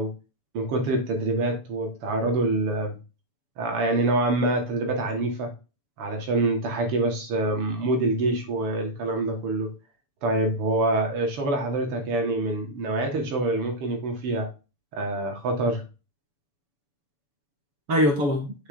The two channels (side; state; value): left; late; 6.9 ms